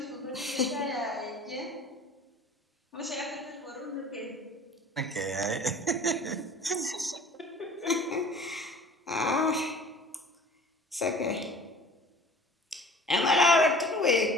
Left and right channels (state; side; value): normal; both; correlation 0.45